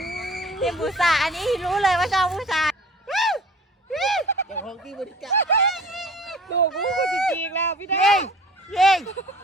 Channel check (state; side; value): normal; both; correlation 0.45